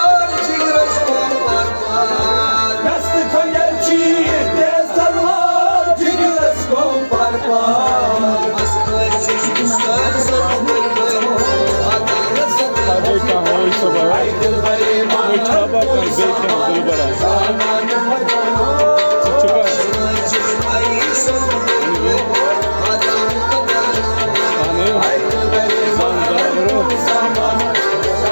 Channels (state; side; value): inverted; both; correlation -1.00